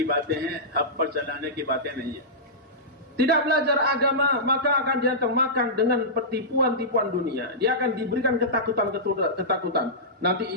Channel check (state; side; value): normal; both; correlation -0.15